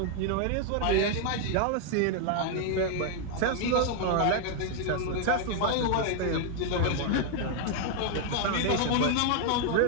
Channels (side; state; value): both; different; correlation 0.00